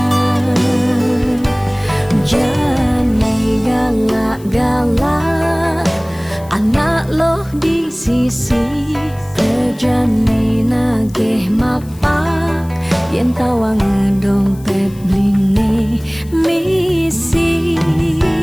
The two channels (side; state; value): left; noise; hiss, 24 dB below the sound